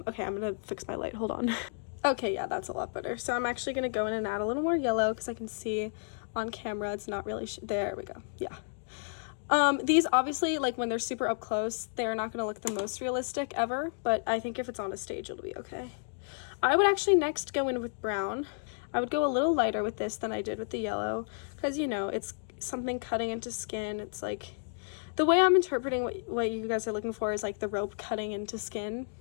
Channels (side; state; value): right; silent; digital silence